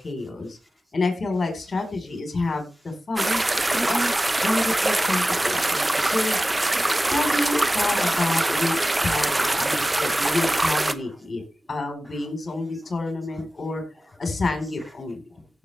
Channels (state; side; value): normal; both; correlation 0.94